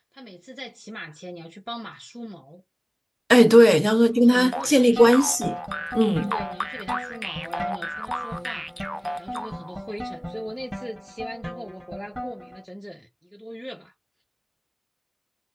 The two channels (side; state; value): both; identical; correlation 1.00